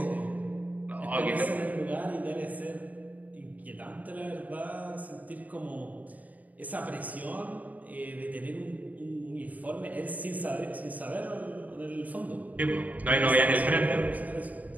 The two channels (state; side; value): late; left; 0.075 ms